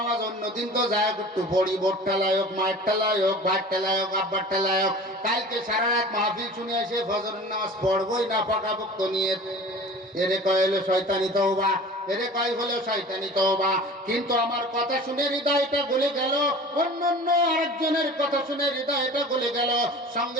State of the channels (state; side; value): normal; both; correlation 0.40